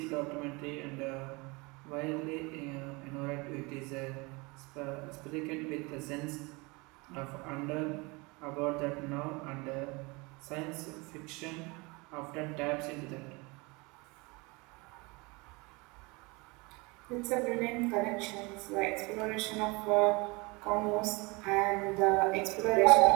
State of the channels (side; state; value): left; quieter; 26.5 dB